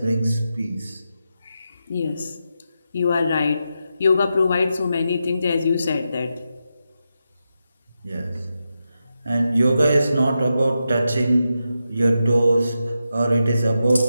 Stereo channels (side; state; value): both; inverted; correlation -0.88